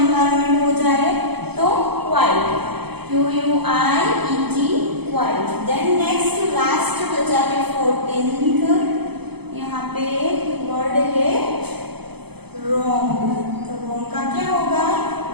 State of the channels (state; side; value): late; left; 0.98 ms